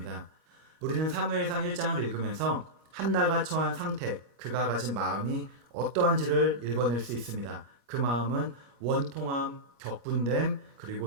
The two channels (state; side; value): late; left; 21 ms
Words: 우리는 사무엘상 1장을 읽으면서 한나가 처한 상태, 그가 가진 마음이 어떠한지를 읽어낼 수 있습니다. 그 마음은 원통함, 격분됨,